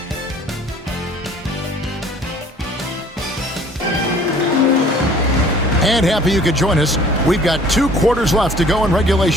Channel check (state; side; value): normal; both; correlation 0.53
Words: And happy you could join us. We've got 2 quarters left to go in